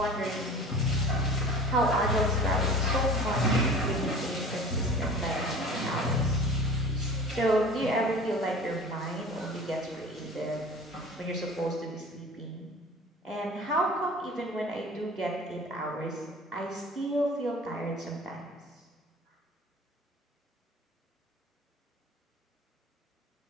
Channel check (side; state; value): both; normal; correlation 0.41